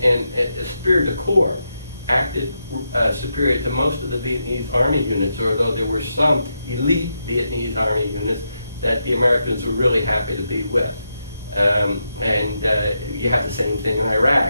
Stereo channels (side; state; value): both; inverted; correlation -0.84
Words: esprit de corps, acted superior to most of the Vietnamese Army units, although there were some elite Vietnamese Army units that the Americans were really happy to be with. You have the same thing in